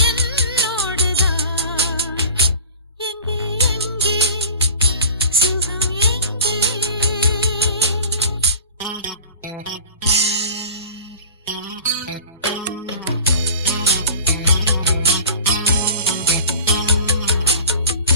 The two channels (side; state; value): both; inverted; correlation -0.38